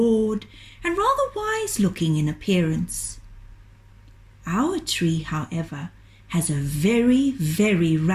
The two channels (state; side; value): identical; both; correlation 1.00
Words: and rather wise-looking in appearance. Our tree, however, has a very, very